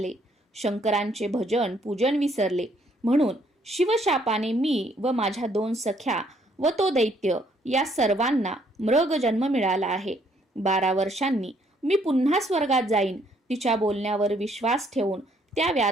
शंकरांचे भजन पूजन विसरले, म्हणून शिवशापाने मी व माझ्या 2 सख्या व तो दैत्य या सर्वांना मृग जन्म मिळाला आहे. 12 वर्षांनी मी पुन्हा स्वर्गात जाईन. तिच्या बोलण्यावर विश्वास ठेवून त्या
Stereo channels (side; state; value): both; normal; correlation 0.67